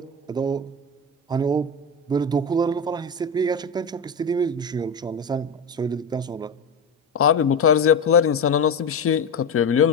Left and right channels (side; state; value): right; quieter; 3.4 dB